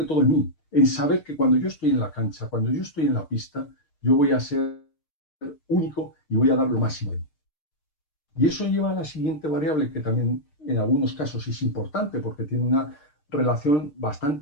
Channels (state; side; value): late; right; 6.6 ms